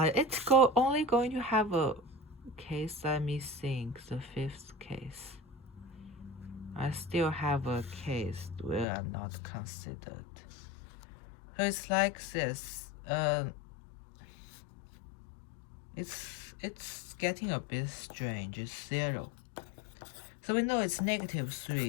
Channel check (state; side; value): drops out; right; at 8.8 s